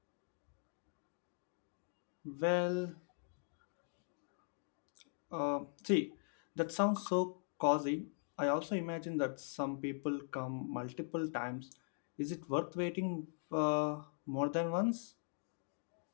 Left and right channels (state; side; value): silent; right; digital silence